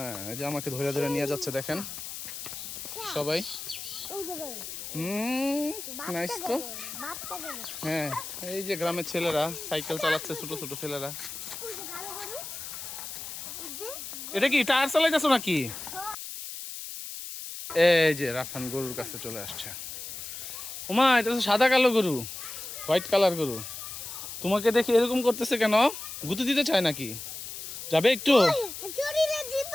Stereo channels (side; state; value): left; noise; hiss, 9 dB below the sound